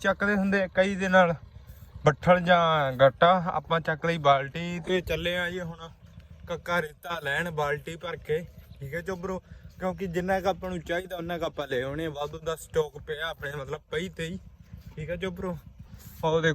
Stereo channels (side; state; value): both; identical; correlation 1.00